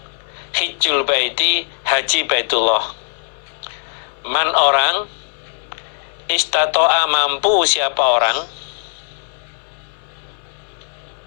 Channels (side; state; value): right; silent; 62 dB below the other